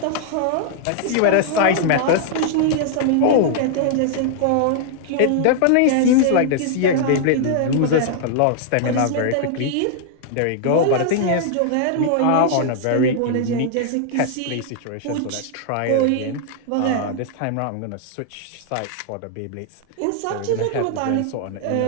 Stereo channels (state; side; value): different; both; correlation -0.01